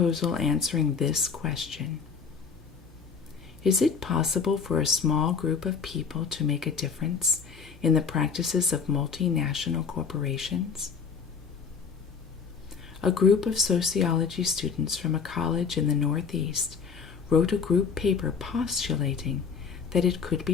answering this question: is it possible for a small group of people to make a difference in the practices of multinational corporations? A group of sociology students from a college in the Northeast wrote a group paper postulating that it could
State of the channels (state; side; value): quieter; right; 5.8 dB